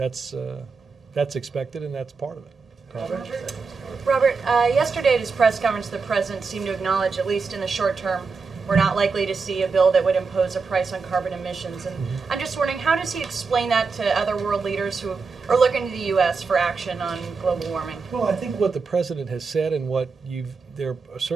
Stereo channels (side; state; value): left; quieter; 4.7 dB